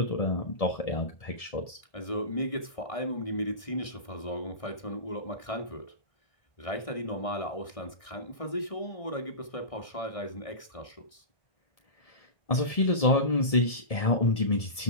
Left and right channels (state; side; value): late; right; 1.6 ms